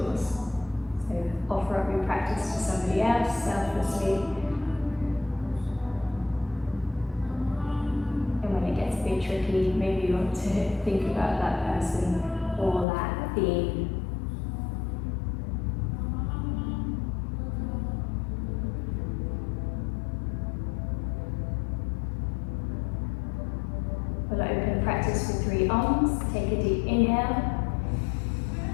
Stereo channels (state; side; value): drops out; right; at 12.9 s